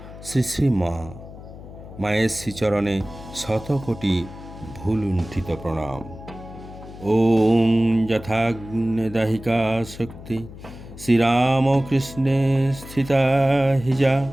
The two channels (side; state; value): left; noise; hum, 15 dB below the sound